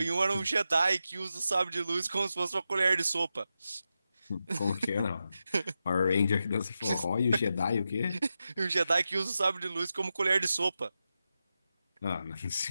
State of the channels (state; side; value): inverted; both; correlation -0.89